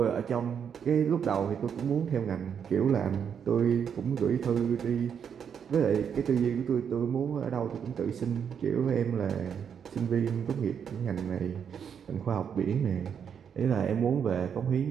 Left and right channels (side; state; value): left; quieter; 7.6 dB